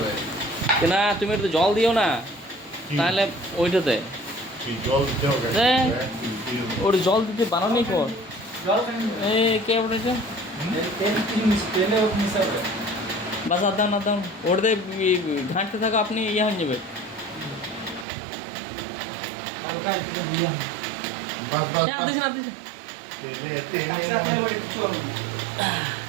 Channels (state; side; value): drops out; left; at 18.1 s